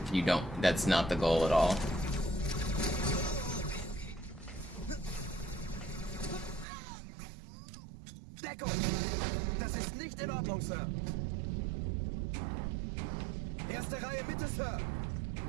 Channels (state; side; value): drops out; left; at 6.7 s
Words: That's not the goal at all. Deckung! Das ist nicht in Ordnung, Sir. Erste Reihe Mitte, Sir.